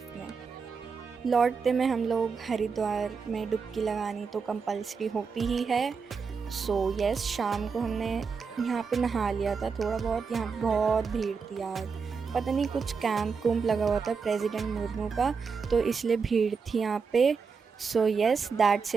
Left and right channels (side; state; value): left; quieter; 5.4 dB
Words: में। लौटते में हम लोग हरिद्वार में डुबकी लगानी तो कंपल्सरी होती ही है। सो यस, शाम को हमने यहाँ पे नहा लिया था थोड़ा बहुत। यहाँ बहुत भीड़ थी यार, पता नहीं कुछ कैंप लगा हुआ था प्रेसिडेंट मुर्मू का, तो इसलिए भीड़ थी यहाँ पे। So yes, that's